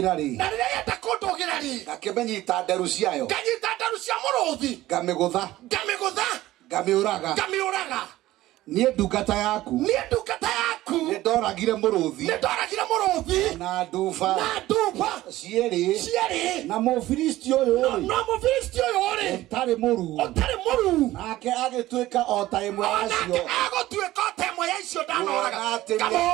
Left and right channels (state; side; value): quieter; left; 16.0 dB